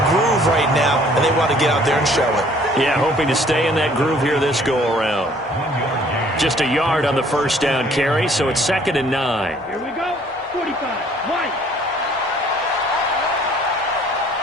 groove right now, and they want to get out there and show it. Yeah, hoping to stay in that groove here this go-around. Just a yard on the 1st down carry, so it's 2nd and 9. Here we go. 45. White.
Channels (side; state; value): both; normal; correlation 0.58